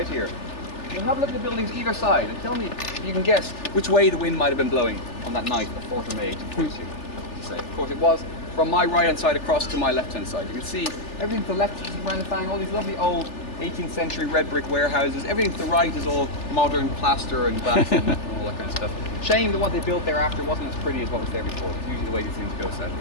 here. You'll have a look at the buildings either side and tell me if you can guess which way the wind might have been blowing on that night, the 4th of May, 1842. Of course, it was from my right hand side across to my left hand side. You can see everything to the left is St. Brendan Fang, all these lovely old 18th century red brick warehouses. Everything to the right is all modern plaster and glass and all that kind of stuff. Shame that what they built thereafter wasn't as pretty as what was there before. It's usually the way these things go, sadly.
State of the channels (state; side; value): late; right; 3.4 ms